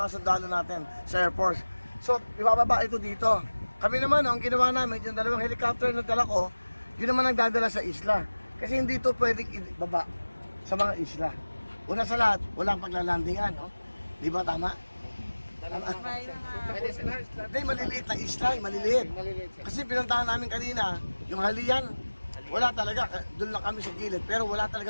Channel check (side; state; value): both; inverted; correlation -1.00